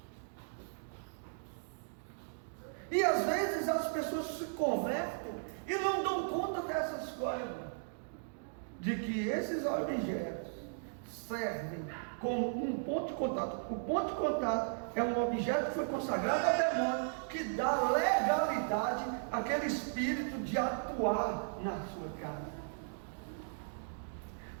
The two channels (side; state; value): left; silent; digital silence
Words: E às vezes as pessoas se convertem e não dão conta dessas coisas, de que esses objetos servem como um ponto de contato. O ponto de contato é um objeto que foi consagrado ao demônio, que dá legalidade àquele espírito de atuar na sua casa.